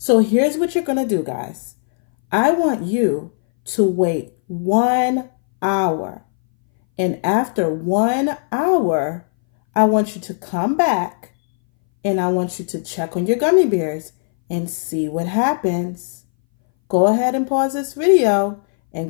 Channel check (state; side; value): silent; right; 61 dB below the other